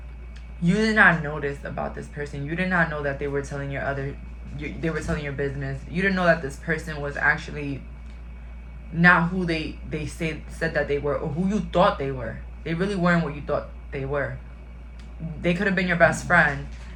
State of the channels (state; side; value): identical; both; correlation 1.00